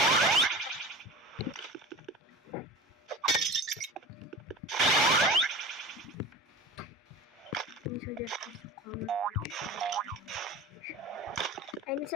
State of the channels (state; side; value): normal; both; correlation 0.34